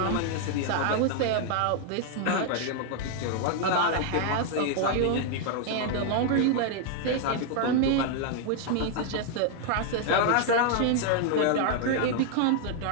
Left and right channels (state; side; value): different; both; correlation 0.00